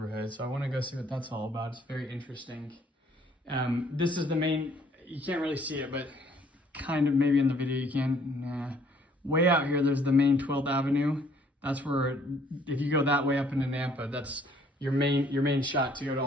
so I wanna go see what that's all about. It's very interesting. This is the main, you can't really see it, but kind of maybe in the video you can. Nah. Way out here, there's the main 12th Avenue. That's where, if you go that way up into Nampa, that's your main shot to go to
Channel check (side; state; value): both; normal; correlation 0.62